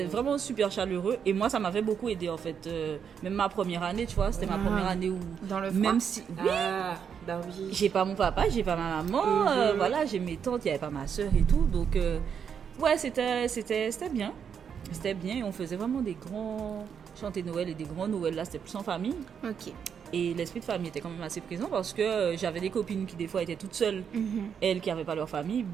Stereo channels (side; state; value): left; quieter; 7.4 dB